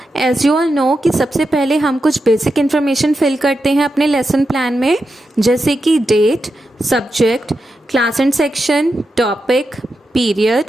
as you all know कि सबसे पहले हम कुछ basic information fill करते हैं अपने lesson plan में, जैसे कि date, subject, class and section, topic,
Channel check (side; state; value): both; normal; correlation 0.88